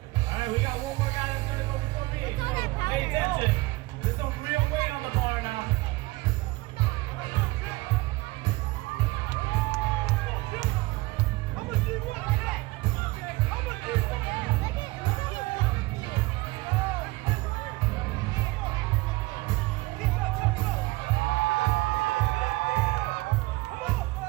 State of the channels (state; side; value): quieter; left; 21.6 dB